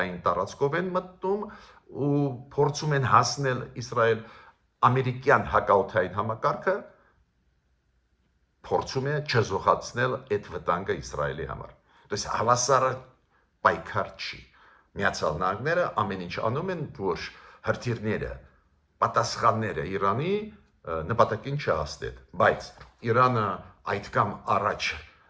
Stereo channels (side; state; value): both; identical; correlation 1.00